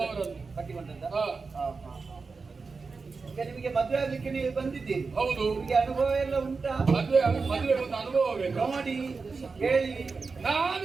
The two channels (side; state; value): left; quieter; 4.5 dB